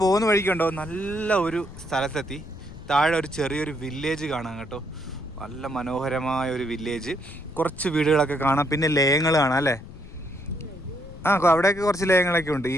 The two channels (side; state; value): left; noise; rumble, 15 dB below the sound